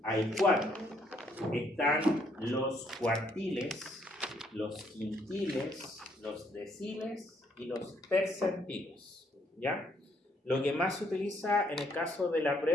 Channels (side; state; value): both; normal; correlation 0.69